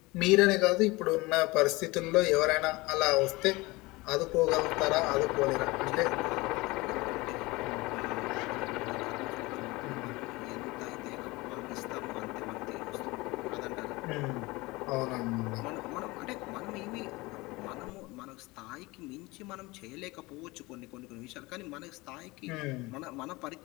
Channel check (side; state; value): right; quieter; 22.4 dB